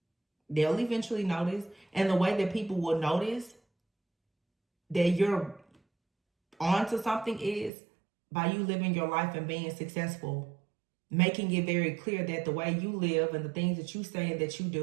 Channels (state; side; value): drops out; left; at 7.7 s